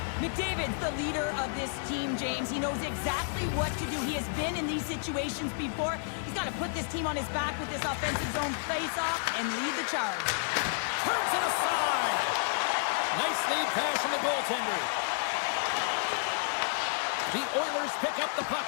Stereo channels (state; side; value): silent; right; digital silence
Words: McDavid's the leader of this team, James. He knows exactly what to do. He has been in these situations before. He's got to put this team on his back with this offensive zone face-off and lead the charge. Turns it aside. Nice lead pass from the goaltender. The Oilers pick up the puck